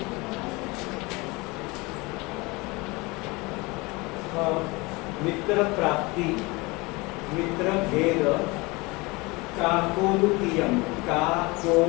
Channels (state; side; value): quieter; right; 24.7 dB